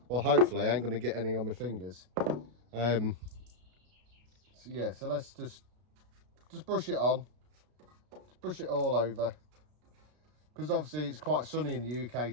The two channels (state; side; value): late; left; 33 ms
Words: Well, hopefully I ain't going to get any on my fingers. So yeah, so let's just brush it on. Just brush it all over. Because obviously it's quite sunny in the